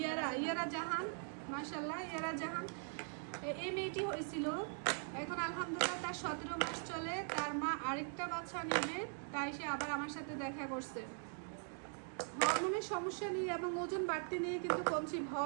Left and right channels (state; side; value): silent; left; 50 dB below the other